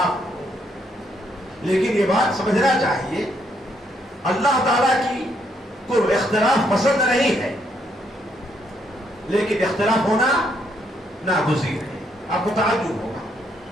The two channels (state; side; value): normal; both; correlation 0.73